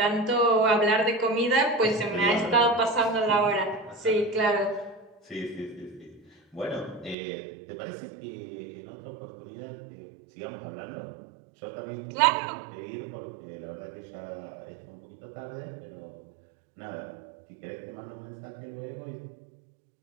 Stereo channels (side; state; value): left; drops out; at 7.2 s